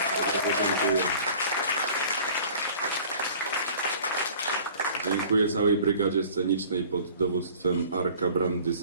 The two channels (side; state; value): both; inverted; correlation -0.48